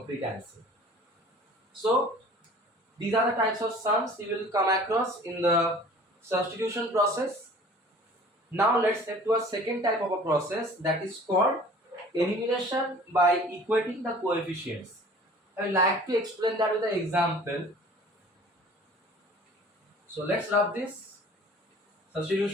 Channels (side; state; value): both; normal; correlation 0.47